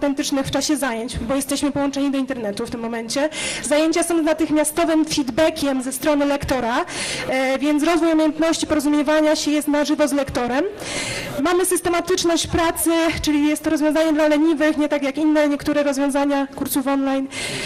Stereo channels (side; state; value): both; identical; correlation 1.00